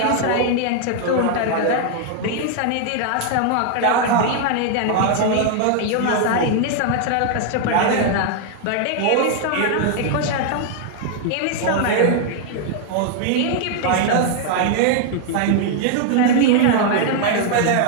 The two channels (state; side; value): different; both; correlation 0.00